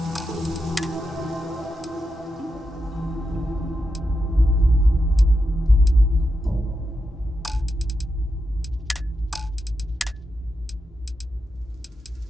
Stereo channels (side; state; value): both; normal; correlation 0.87